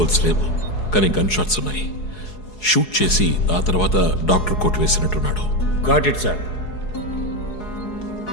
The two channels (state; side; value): late; right; 4.7 ms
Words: లేవు, కానీ గన్ షాట్స్ ఉన్నాయి. షూట్ చేసి ఆ తర్వాత డాక్టర్ కోట్ వేసినట్టున్నాడు. Got it sir.